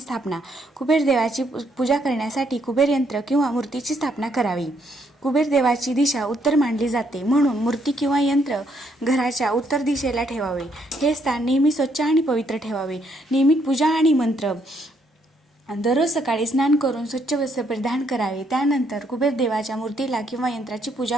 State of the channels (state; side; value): normal; both; correlation 0.72